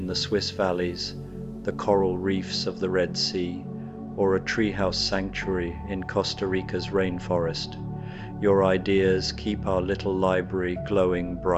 the Swiss valleys, the coral reefs of the Red Sea, or a treehouse sanctuary in Costa Rica's rainforest. Your ideas keep our little library glowing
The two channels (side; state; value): both; identical; correlation 1.00